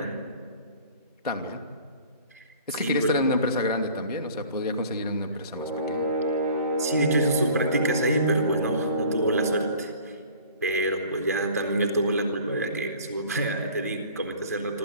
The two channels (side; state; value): both; inverted; correlation -0.47